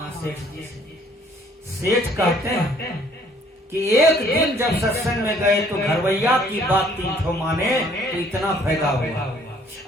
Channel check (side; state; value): both; normal; correlation 0.60